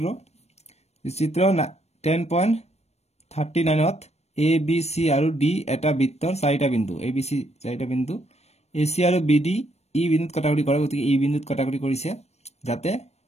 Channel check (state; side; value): late; right; 0.31 ms